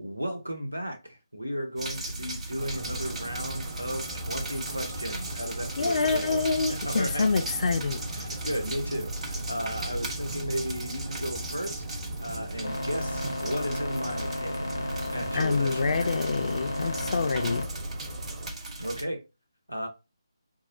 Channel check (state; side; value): inverted; both; correlation -0.80